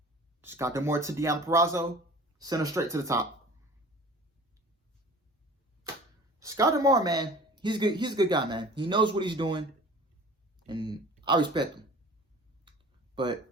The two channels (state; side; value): normal; both; correlation 0.43